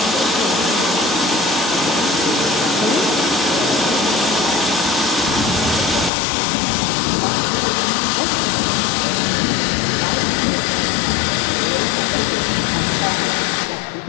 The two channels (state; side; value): drops out; right; at 6.1 s